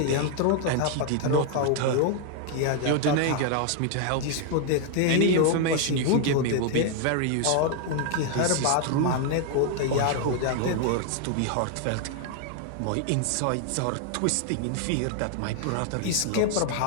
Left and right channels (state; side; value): different; both; correlation 0.00